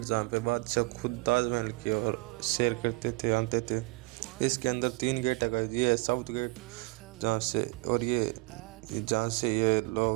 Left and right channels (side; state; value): left; quieter; 25.0 dB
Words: जहाँ पे बादशाह खुद ताजमहल की ओर सैर करते थे, आते थे। इसके अंदर 3 गेट है गाइस। ये है साउथ गेट जहाँ से, और ये जहाँ से ये